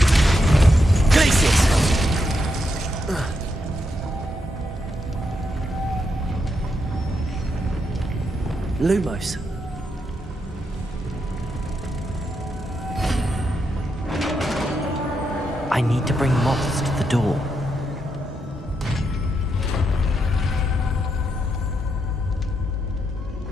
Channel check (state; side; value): normal; both; correlation 0.82